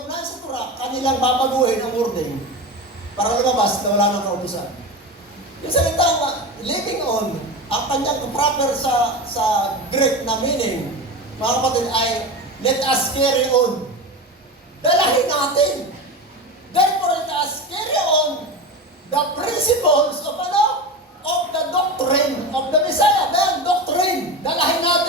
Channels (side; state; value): both; normal; correlation 0.25